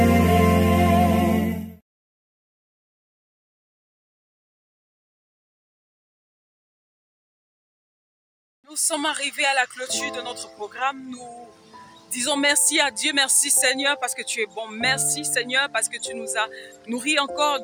Nous sommes arrivés à la clôture de notre programme. Nous disons merci à Dieu, merci Seigneur parce que tu es bon. Merci Seigneur parce que tu nous as nourris encore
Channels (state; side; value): identical; both; correlation 1.00